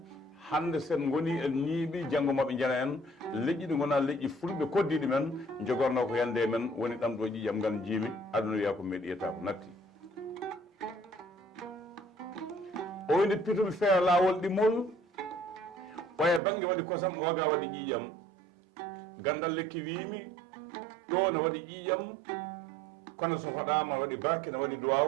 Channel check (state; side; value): drops out; left; at 16.4 s